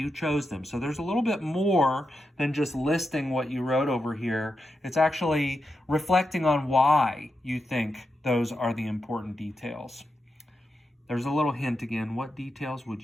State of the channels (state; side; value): normal; both; correlation 0.87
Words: chose them. So there's a little bit more than just listing what you wrote over here. It's actually reflecting on why you think those are the important details. There's a little hint again. What details